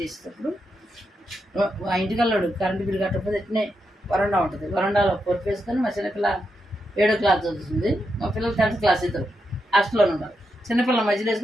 ఆ ఇంటికల్లాడు కరెంటు బిల్లు కట్టకపోతే ఎట్నే వరండా ఉంటుంది, వరండాలో పొరుపు వేసుకొని మా చిన్నపిల్ల 7వ క్లాస్ చదువుతుంది, మా పిల్లలు 10th క్లాస్ ఇద్దరు హాస్టల్లోనే ఉన్నారు. చిన్నపిల్లల మధ్యలో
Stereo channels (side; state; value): both; normal; correlation 0.84